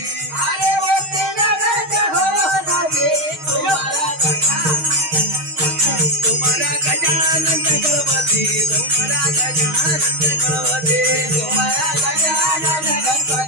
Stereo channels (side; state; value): left; late; 6.4 ms